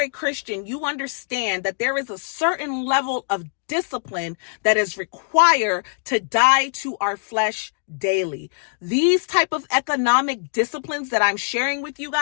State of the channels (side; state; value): right; silent; digital silence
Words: a Christian, you understand that there is a certain level of discipline that is required to die to our flesh daily. These type of economic disciplines that I'm sharing with you